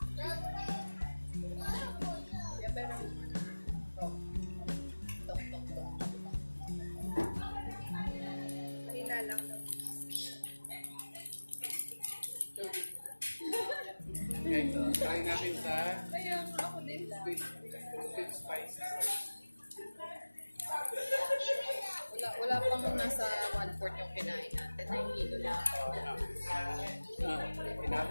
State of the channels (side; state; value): both; inverted; correlation -1.00